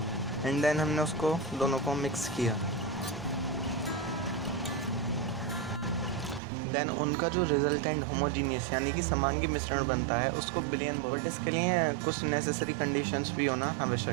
एंड देन हमने उसको दोनों को मिक्स किया। देन उनका जो रिजल्टेंट होमोजीनियस यानी कि समांगी मिश्रण बनता है उसको बिलियन बोलते हैं। बट इसके लिए कुछ नेसेसरी कंडीशंस भी होना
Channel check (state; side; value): drops out; left; at 6.4 s